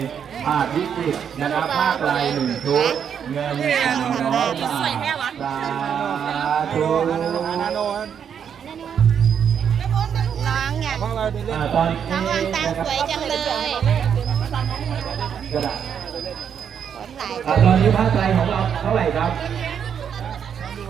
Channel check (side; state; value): left; quieter; 7.9 dB